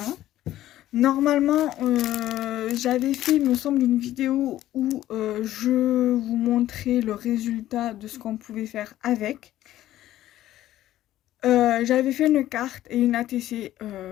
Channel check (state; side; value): quieter; right; 13.8 dB